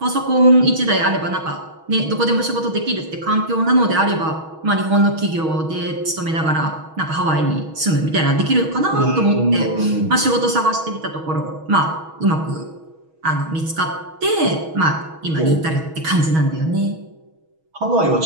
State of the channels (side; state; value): left; late; 6.3 ms